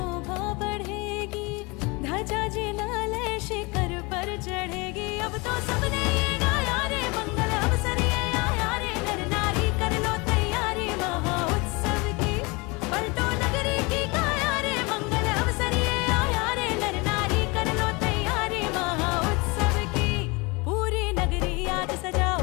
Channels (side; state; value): right; quieter; 26.9 dB